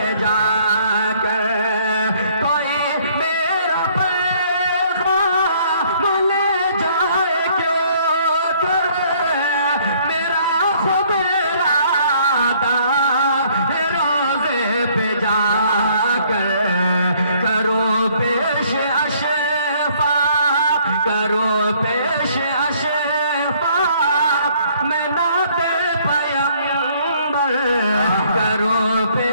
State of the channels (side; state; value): both; inverted; correlation -0.62